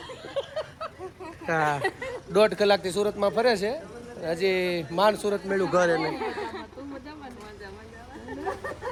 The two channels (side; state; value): both; identical; correlation 1.00